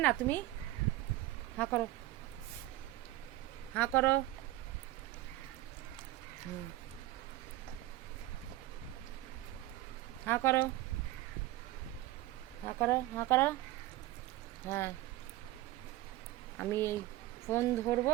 না তুমি? হাঁ করো, হাঁ করো। হুম, হাঁ করো, হাঁ করো, হাঁ করো। হ্যাঁ, আমি এই ফোন ধরবো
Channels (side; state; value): left; quieter; 16.2 dB